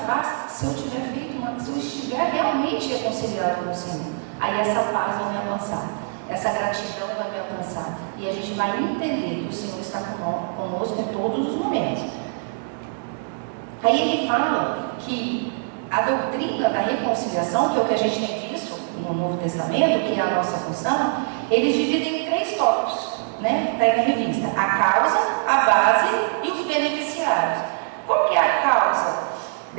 se eu estiver realmente reconciliado com o Senhor. Aí essa paz vai me alcançar, essa gratidão vai me alcançar, e a gente vai entender que o Senhor está conosco em todos os momentos. Aí ele fala que a doutrina da reconciliação, que é o que a gente tem visto no Novo Testamento, que é a nossa função, eles dividem em 3 tópicos, né? Está aí na revista: a causa, a base e os beneficiários. Qual que é a causa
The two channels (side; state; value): left; silent; digital silence